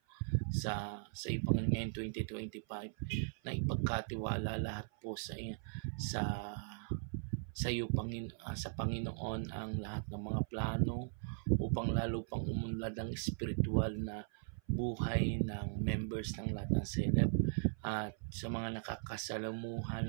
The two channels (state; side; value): silent; left; 52 dB below the other